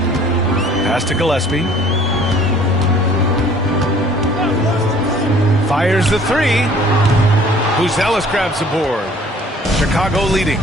Pass to Gillespie. Fires the 3. Buzelis grabs the board. Chicago leading.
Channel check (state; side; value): normal; both; correlation 0.54